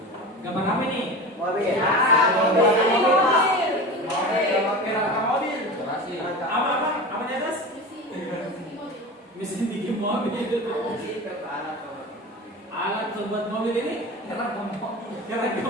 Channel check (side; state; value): both; normal; correlation 0.30